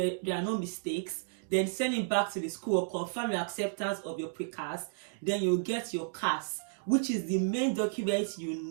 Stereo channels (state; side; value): silent; left; digital silence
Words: are no mistakes, then send it back to the school or confirm your acceptance of your Pre-Cas. Then you'll get your CAS, which is the main document you